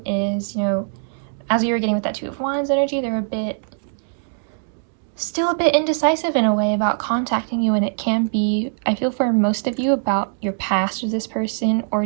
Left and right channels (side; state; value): left; silent; digital silence